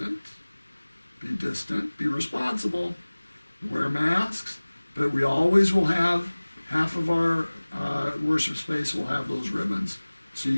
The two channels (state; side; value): inverted; both; correlation -1.00